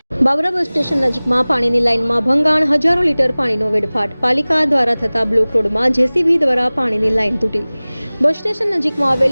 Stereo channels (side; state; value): both; inverted; correlation -0.99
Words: Babra bus station નજીકમાં પાણીની લાઇનમાં ભંગાણ, હજારો લીટર પાણીનો વેડફાટ. પાલિકા દ્વારા થતા બ્લોક રોડમાં જેસીબી દ્વારા પાણીની લાઇન તૂટી. બસ સ્ટેશન નજીકમાં